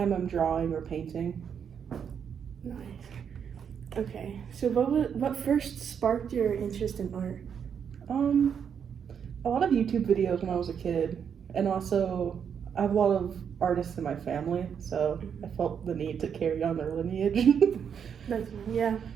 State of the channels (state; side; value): quieter; left; 7.6 dB